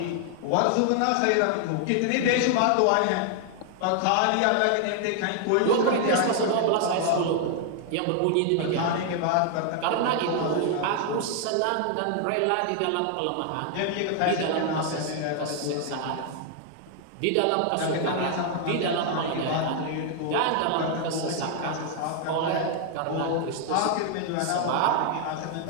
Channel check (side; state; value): both; different; correlation 0.00